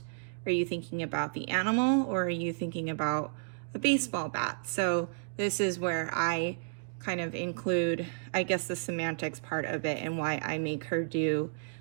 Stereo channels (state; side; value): silent; left; digital silence